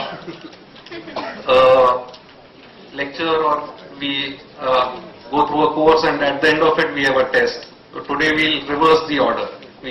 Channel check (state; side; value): identical; both; correlation 1.00